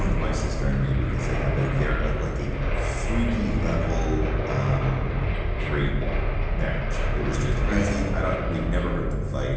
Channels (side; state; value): both; identical; correlation 1.00